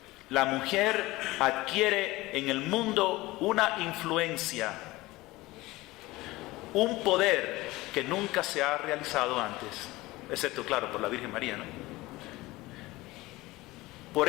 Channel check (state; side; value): quieter; right; 19.8 dB